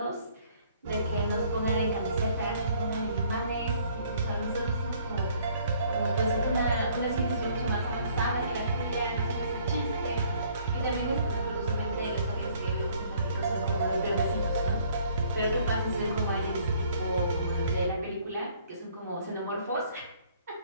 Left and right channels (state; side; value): inverted; both; correlation -0.60